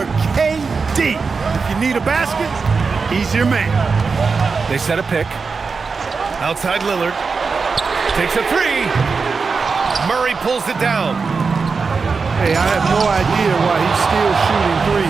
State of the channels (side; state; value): left; quieter; 4.9 dB